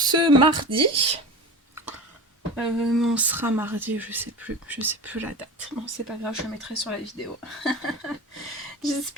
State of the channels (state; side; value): normal; both; correlation 0.31